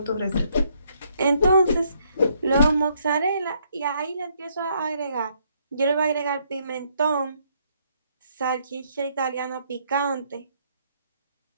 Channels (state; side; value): inverted; both; correlation -0.71